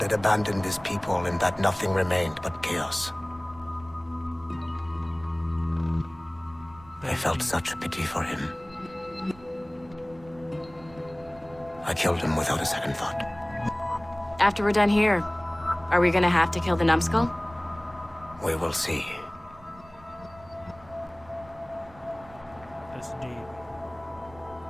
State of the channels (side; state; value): right; noise; rumble, 23 dB below the sound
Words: had abandoned his people and that nothing remained but chaos. I felt such pity for him. I killed him without a second thought. After we're done here, are we gonna have to kill the numbskull? We will see. That's deep.